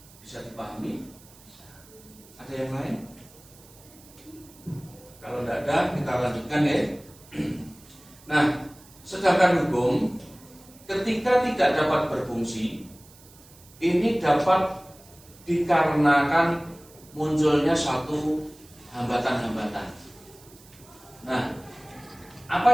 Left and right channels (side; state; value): right; noise; hiss, 24 dB below the sound